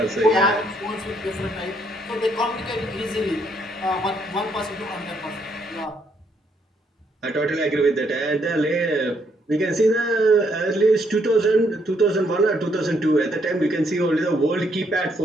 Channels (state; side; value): normal; both; correlation 0.72